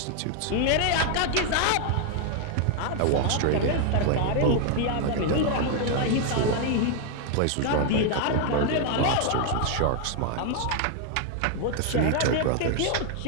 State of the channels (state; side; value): different; both; correlation 0.00